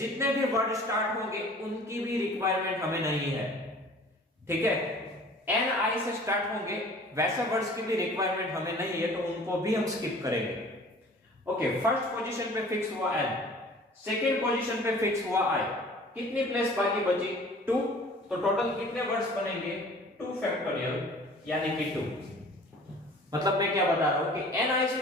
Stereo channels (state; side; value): normal; both; correlation 0.47